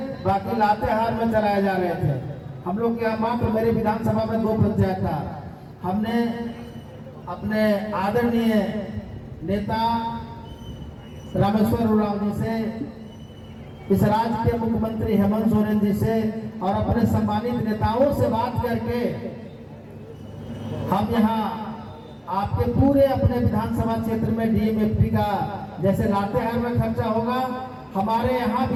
बाकी लातेहार में चलाए जा रहे थे। हम लोग के यहाँ मात्र मेरे विधानसभा में 2 पंचायत था। हमने अपने आदरणीय नेता रामेश्वर उरांव जी से, इस राज्य के मुख्यमंत्री हेमंत सोरेन जी से और अपने सम्मानित नेताओं से बात करके हम यहाँ आपके पूरे अपने विधानसभा क्षेत्र में डीएमएफटी का जैसे लातेहार में खर्चा होगा, हमारे यहाँ भी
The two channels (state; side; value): identical; both; correlation 1.00